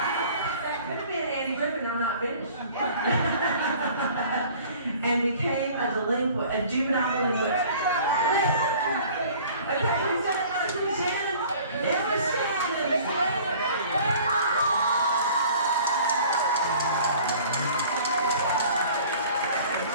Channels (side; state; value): both; inverted; correlation -0.49